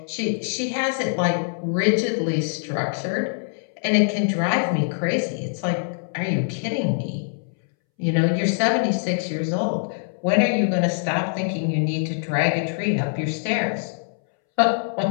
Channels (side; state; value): right; silent; 63 dB below the other